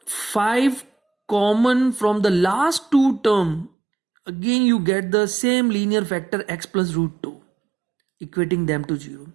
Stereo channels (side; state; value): left; drops out; at 3.7 s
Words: 5 common from the last two term, again you get the same linear factor x plus root 2, equating them to 0.